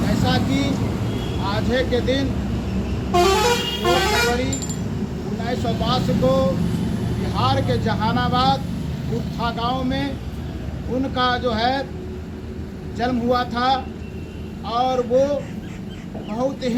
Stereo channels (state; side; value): identical; both; correlation 1.00